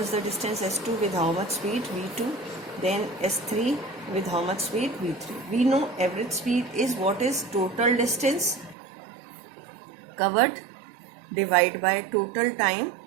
the distance S2 with how much speed V2, then S3 with how much speed V3. We know average speed is what is total distance covered divided by total time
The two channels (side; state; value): left; drops out; at 8.8 s